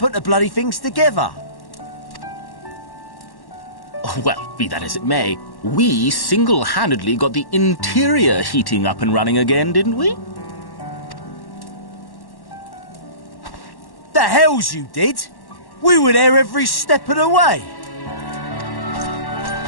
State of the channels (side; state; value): right; late; 1.1 ms